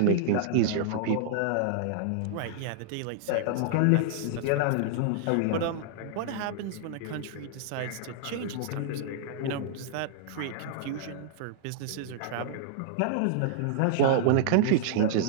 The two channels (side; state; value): both; different; correlation -0.01